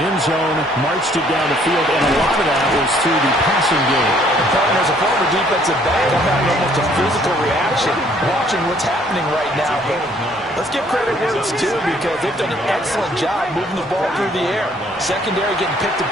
end zone, marched it down the field, and a lot of that was through the passing game. And as a former defensive back, I'm having almost a physical reaction watching what's happening right now. But let's give credit where it's due because they've done an excellent job moving the ball through the air. Secondary getting picked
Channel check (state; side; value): normal; both; correlation 0.62